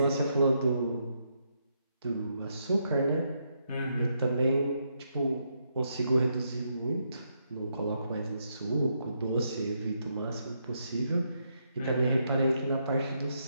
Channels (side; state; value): both; inverted; correlation -0.78